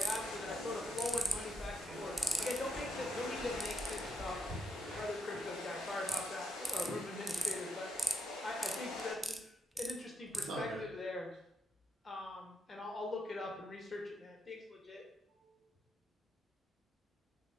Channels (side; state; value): both; normal; correlation 0.80